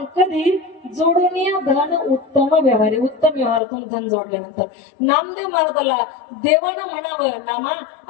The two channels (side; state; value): right; drops out; at 3.6 s